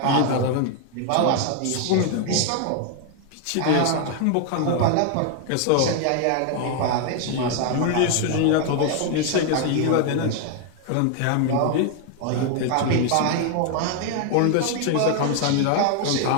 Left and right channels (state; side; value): different; both; correlation 0.00